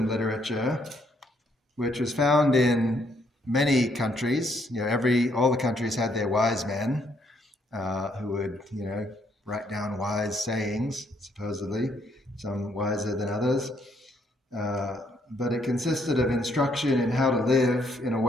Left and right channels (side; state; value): both; normal; correlation 0.70